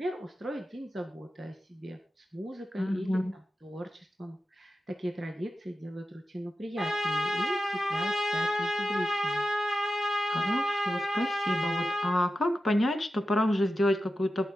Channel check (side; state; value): both; normal; correlation 0.92